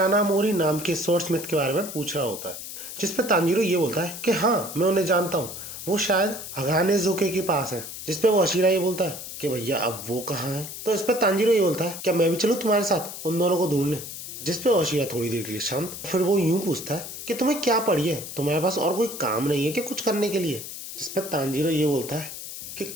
नाम के स्वॉर्डस्मिथ के बारे में पूछ रहा होता है, जिसपे तांजीरो ये बोलता है कि हाँ मैं उन्हें जानता हूँ, वो शायद हगाने ज़ोके के पास है। जिसपे वो हाशिरा ये बोलता है कि भैया अब वो कहाँ है। तो इस पे तांजीरो ये बोलता है क्या मैं भी चलूँ तुम्हारे साथ उन दोनों को ढूंढने। जिसपे हाशिरा थोड़ी देर के लिए शांत, फिर वो यूं पूछता है कि तुम्हें क्या पड़ी है, तुम्हारे पास और कोई काम नहीं है कि कुछ करने के लिए। जिसपे तांजीरो ये बोलता है कि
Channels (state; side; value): noise; left; hiss, 10 dB below the sound